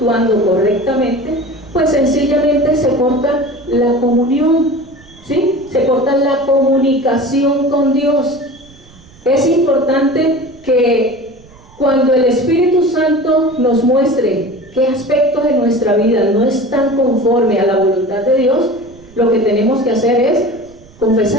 correctamente, pues sencillamente se corta la comunión, ¿sí? Se corta la comunicación con Dios. Es importante que cuando el Espíritu Santo nos muestre qué aspectos de nuestra vida no están conforme a la voluntad de Dios, lo que tenemos que hacer es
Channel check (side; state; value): right; noise; rumble, 25 dB below the sound